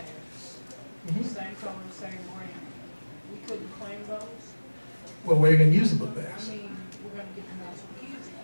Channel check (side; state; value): both; inverted; correlation -1.00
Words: Mm-hmm. same color, same brand, we couldn't claim those? Well, where are you going to use the book I bags? mean, we're gonna get them out to kids,